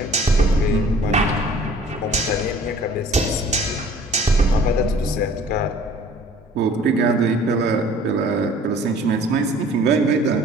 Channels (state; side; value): normal; both; correlation 0.51